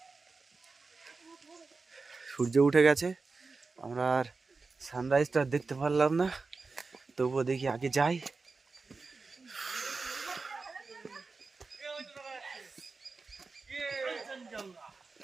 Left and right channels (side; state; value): left; quieter; 4.1 dB